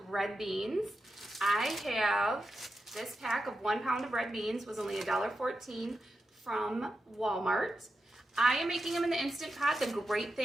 red beans. I have this pack of 1 pound of red beans, was only $1.14 from Walmart. I am making them in the Instant Pot. The great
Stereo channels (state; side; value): normal; both; correlation 0.89